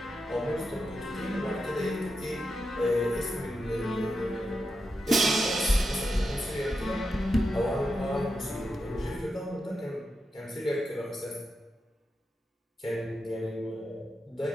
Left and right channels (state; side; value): normal; both; correlation 0.87